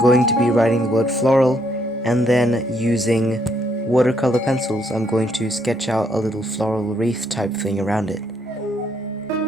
to be writing the word floral, and then using watercolor pencils I'm going to sketch out a little floral wreath type thing around it.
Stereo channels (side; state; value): both; normal; correlation 0.72